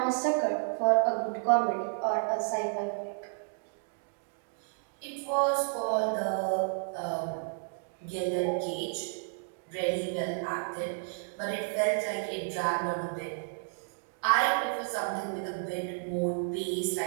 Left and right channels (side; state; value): left; silent; digital silence